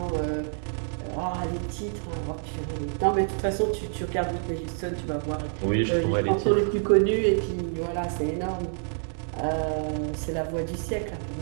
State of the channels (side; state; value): left; silent; digital silence